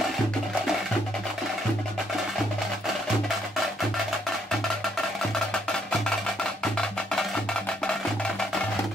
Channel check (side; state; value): both; normal; correlation 0.71